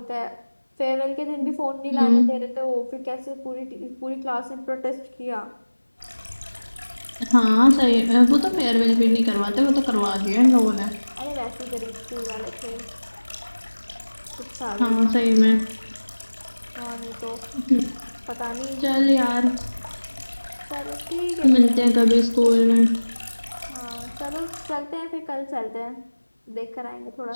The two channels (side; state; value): both; inverted; correlation -1.00